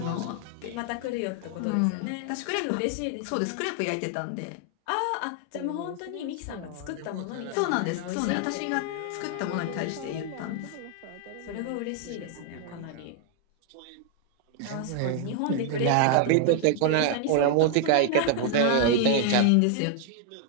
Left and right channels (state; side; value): different; both; correlation 0.00